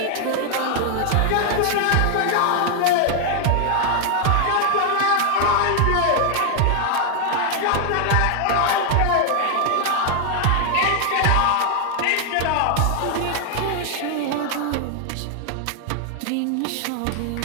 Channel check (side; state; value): both; different; correlation 0.00